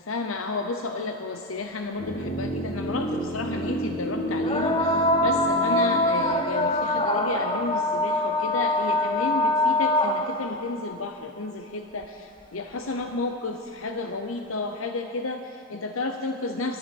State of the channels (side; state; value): both; normal; correlation 0.15